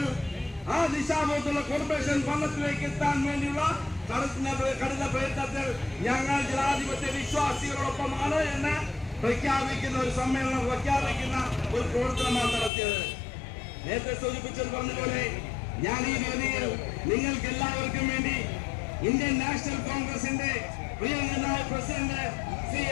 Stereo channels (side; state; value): right; drops out; at 12.7 s